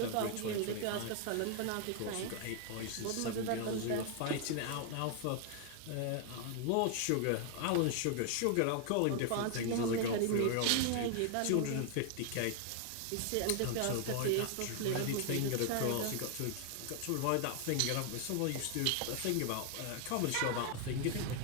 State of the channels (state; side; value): different; both; correlation 0.00